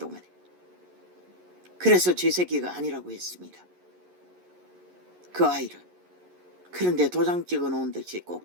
그래서 제 새끼가 아니라고 했습니다. 그 아이를. 그런데 도장 찍어 놓은 듯이 꼭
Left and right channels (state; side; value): late; left; 11 ms